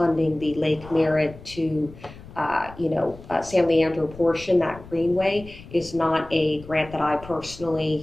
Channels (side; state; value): left; noise; rumble, 18 dB below the sound